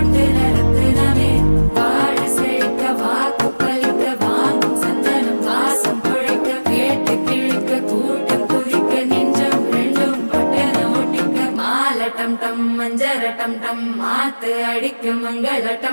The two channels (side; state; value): both; inverted; correlation -1.00